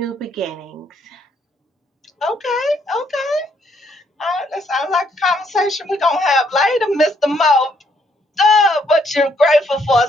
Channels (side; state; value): both; normal; correlation 0.70